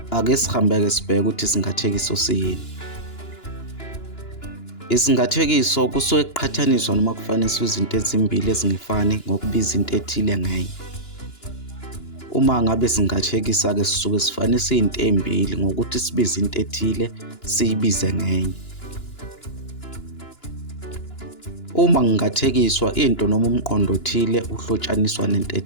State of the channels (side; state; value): right; late; 2.9 ms